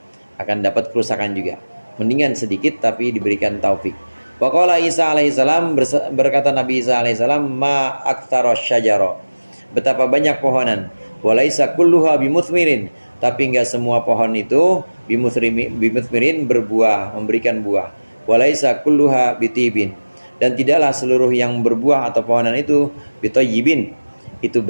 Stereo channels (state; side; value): inverted; both; correlation -1.00